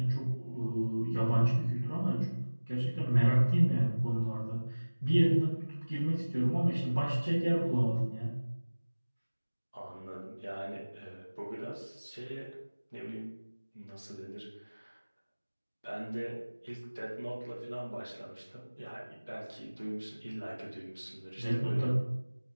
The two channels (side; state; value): both; inverted; correlation -1.00